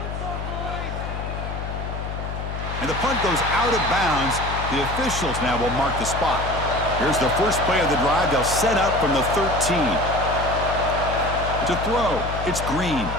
And the punt goes out of bounds. The officials now will mark the spot. Here's the first play of the drive. They'll set up from the 13. To throw, it's Green.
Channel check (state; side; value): noise; left; hum, 6 dB below the sound